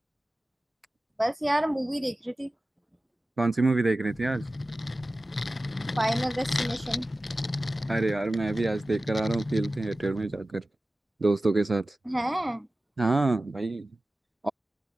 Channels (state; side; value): normal; both; correlation 0.96